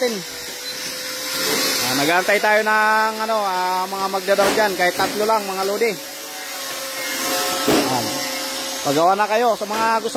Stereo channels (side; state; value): both; identical; correlation 1.00